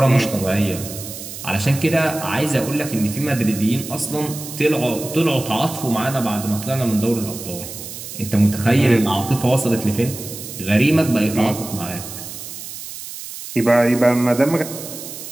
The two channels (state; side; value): noise; right; hiss, 11 dB below the sound